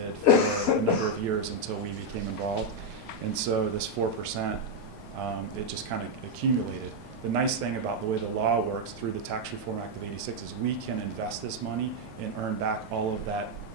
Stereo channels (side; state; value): both; normal; correlation 0.01